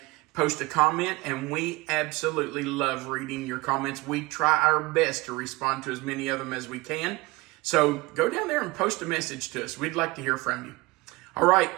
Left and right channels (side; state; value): left; quieter; 22.5 dB